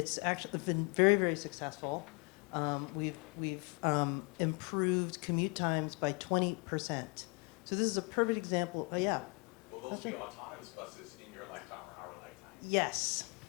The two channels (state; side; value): quieter; right; 32.4 dB